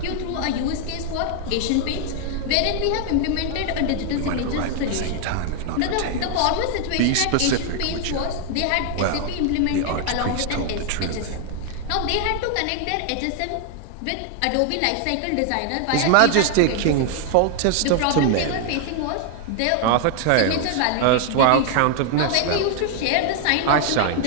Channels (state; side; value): different; both; correlation 0.00